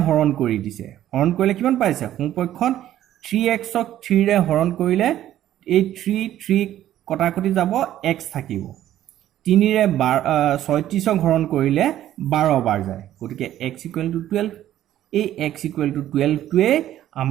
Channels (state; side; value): quieter; left; 12.5 dB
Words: হৰণ কৰি দিছে হৰণ কৰিলে কিমান পাইছে সোঁপক্ষত 3x ক 3 ৰে হৰণ কৰিলে এই 3 কটাকটি যাব x থাকিব 3 ৰে 36 ক হৰণ কৰিলে 12 বাৰ যায় গতিকে x = 12 এই x = 12 টোৱে